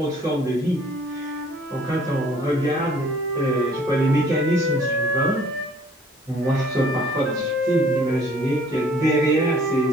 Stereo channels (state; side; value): normal; both; correlation 0.56